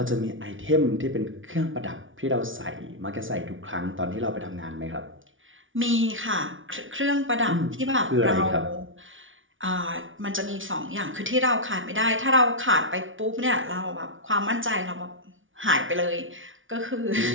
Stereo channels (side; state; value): left; late; 0.57 ms